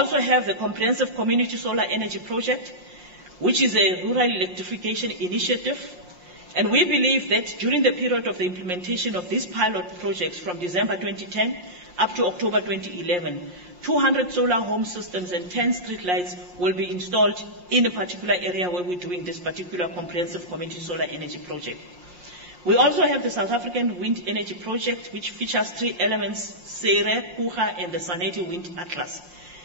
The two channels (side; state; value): left; late; 5.6 ms